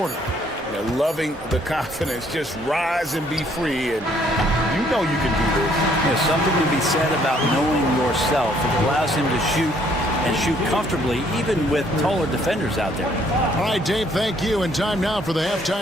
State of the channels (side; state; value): both; normal; correlation 0.64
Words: They're loving the confidence. Just rise and be free, and you know you can do this. There's something to be said about knowing yourself. It allows him to shoot and shoot comfortably, even with taller defenders out there. All right, Dave, thank you. And time now for the